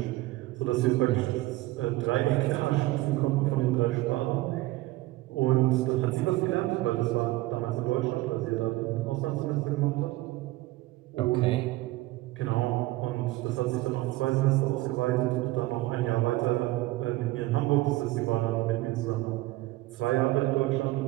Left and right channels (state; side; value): quieter; left; 18.6 dB